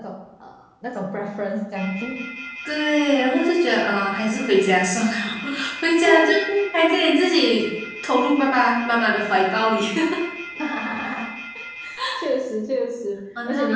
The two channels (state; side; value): identical; both; correlation 1.00